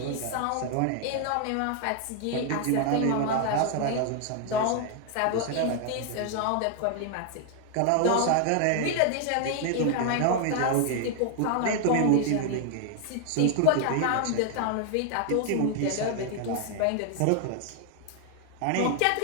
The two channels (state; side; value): different; both; correlation 0.00